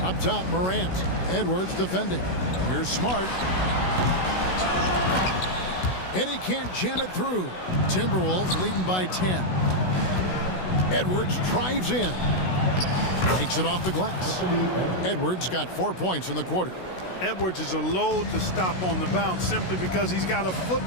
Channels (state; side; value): late; right; 16 ms